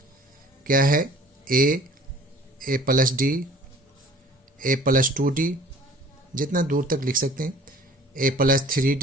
क्या है, a plus d, a plus 2d, जितना दूर तक लिख सकते हैं, a plus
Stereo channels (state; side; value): normal; both; correlation 0.49